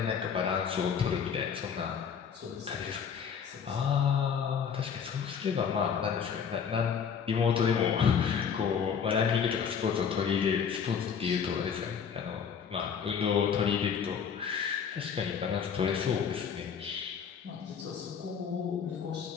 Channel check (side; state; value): right; quieter; 7.0 dB